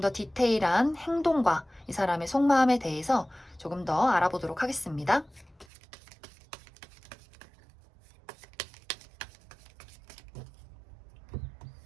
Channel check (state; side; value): drops out; left; at 5.7 s